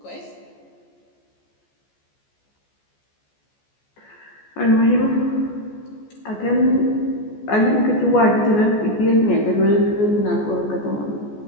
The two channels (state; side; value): late; right; 14 ms